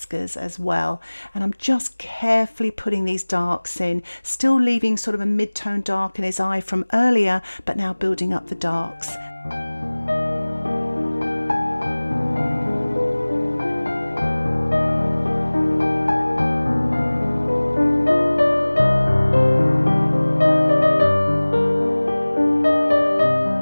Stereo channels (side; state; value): both; inverted; correlation -1.00